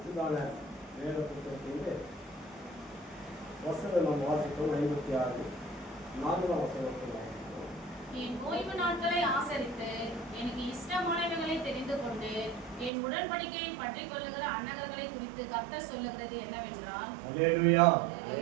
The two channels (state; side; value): drops out; left; at 12.9 s